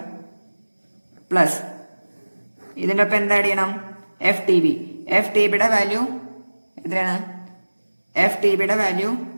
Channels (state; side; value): inverted; both; correlation -1.00